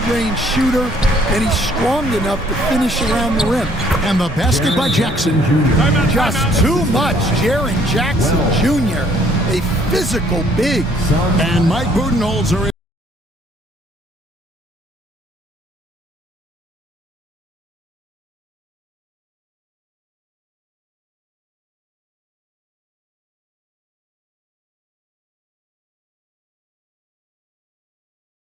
shooter, and he's strong enough to finish around the rim. And the basket by Jackson. Just too much. Jaren Jackson Jr., a physical big. And Mike Budenholzer.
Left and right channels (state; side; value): normal; both; correlation 0.62